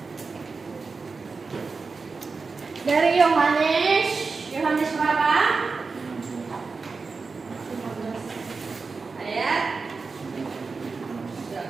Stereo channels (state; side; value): quieter; left; 4.4 dB